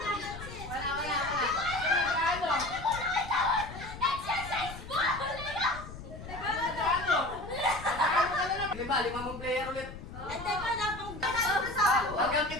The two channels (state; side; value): noise; left; rumble, 12 dB below the sound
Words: Wala. Exercise ball! Lima mong player ulit. At teka lang, kung gano'n sa Hanggang